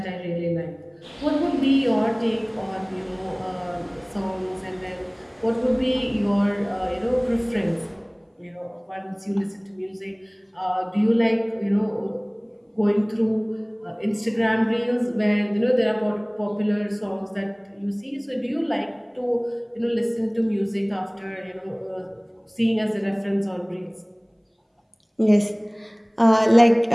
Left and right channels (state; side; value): identical; both; correlation 1.00